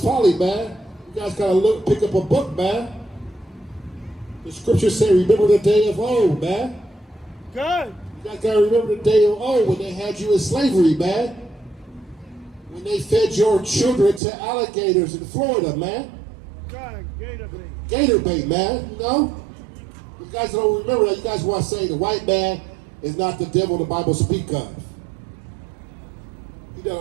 folly, man. You guys gotta pick up a book, man. The scriptures say, remember the day of old, man. Good. You guys gotta remember the day of old when they had you in slavery, man. When they fed your children to alligators in Florida, man. Good. Gator bait. Gator bait, man, you know? You guys don't remember that. You guys want to say the white man is not the devil the Bible speak of. He done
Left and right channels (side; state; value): left; drops out; at 14.2 s